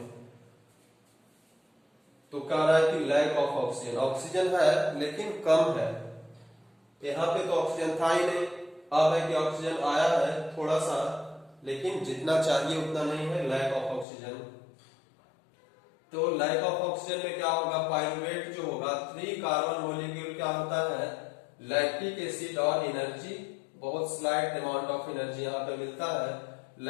तो कह रहा है कि लैक ऑफ ऑक्सीजन। ऑक्सीजन है लेकिन कम है, यहाँ पे तो ऑक्सीजन था ही नहीं, अब है कि ऑक्सीजन आया है थोड़ा सा, लेकिन जितना चाहिए उतना नहीं है, लैक ऑफ ऑक्सीजन। तो लैक ऑफ ऑक्सीजन में क्या होगा, पाइरुवेट जो होगा, 3 कार्बन मॉलिक्यूल क्या होता है, लैक्टिक एसिड और एनर्जी, बहुत स्लाइट अमाउंट ऑफ एनर्जी यहाँ पे मिलता है।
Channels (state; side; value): drops out; right; at 14.1 s